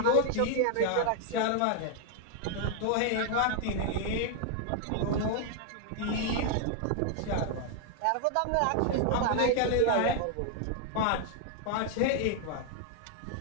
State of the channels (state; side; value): different; both; correlation 0.00